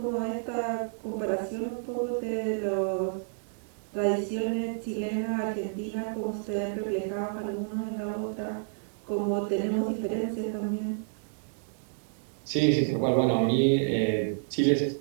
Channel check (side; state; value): left; silent; digital silence